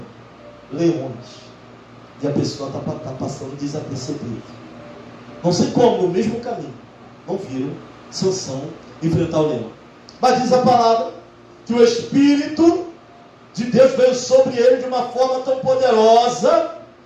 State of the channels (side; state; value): both; identical; correlation 1.00